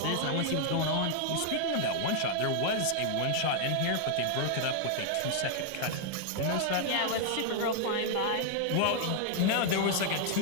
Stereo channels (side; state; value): both; different; correlation 0.00